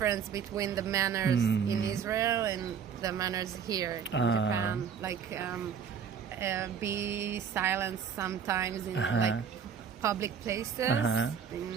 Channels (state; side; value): quieter; left; 7.2 dB